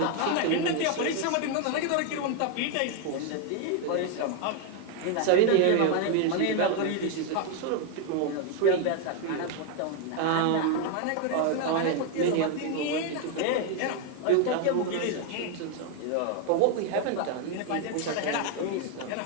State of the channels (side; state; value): both; different; correlation 0.01